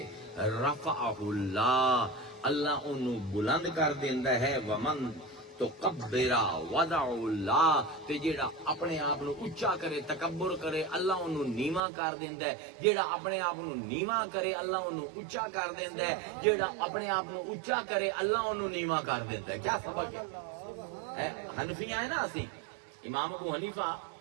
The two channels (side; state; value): left; drops out; at 11.8 s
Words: رفعہ اللہ، اللہ انہوں بلند کر دیندا ہے. ومن تکبرا وضع اللہ، تے جیڑا اپنے آپ نو اونچا کرے تکبر کرے اللہ انہوں نیواں کر دیندا ہے. جیڑا اپنے آپ نو نیواں کرے اللہ انہوں اونچا کر دیندا ہے. جیڑا اپنے آپ نو اونچا کرے اللہ انہوں نیواں کر دیندا ہے. کیا سبق ہے؟ حنفیاں ہے نا اسی، امام ابو حنیفہ